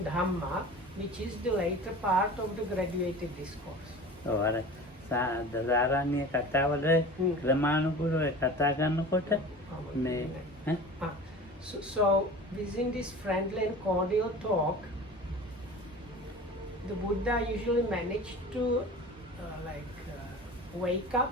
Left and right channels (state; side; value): normal; both; correlation 0.38